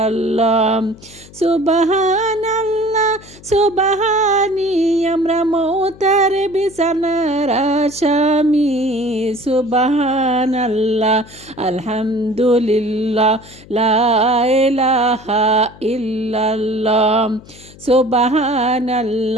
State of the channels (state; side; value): noise; left; hum, 21 dB below the sound